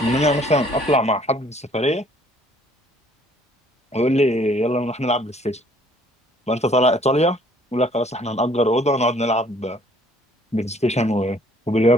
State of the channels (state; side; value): normal; both; correlation 0.59